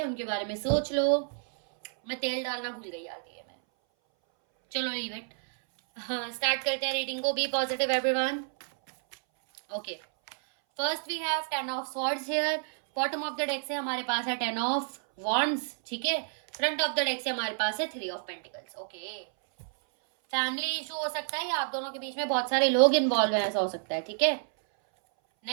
उनके बारे में सोच लो। मैं तेल डालना भूल गई यार, ये मैं, चलो लीव इट। हाँ, स्टार्ट करते हैं रीडिंग को। Be positive everyone. Okay, first we have 10 of swords here. Bottom of the deck से हमारे पास है 10 ऑफ वॉन्ड्स, ठीक है। फ्रंट ऑफ द डेक से हमारे पास है 3 of pentacles. Okay, family issue हो सकता है या आप दोनों के बीच में बहुत सारे लोग इन्वॉल्व हैं, ऐसा हो सकता है, ठीक है।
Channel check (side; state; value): left; silent; 58 dB below the other